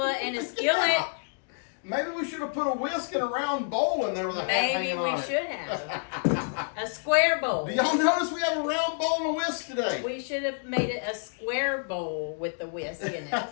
and a skillet. Yeah. Maybe we should have put a whisk and a round bowl in there with a hat hanging on it. Maybe we should have. A square bowl. Do y'all notice we have a round bowl and a whisk today? We should have made it a square bowl with the whisk in it.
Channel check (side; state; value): right; silent; digital silence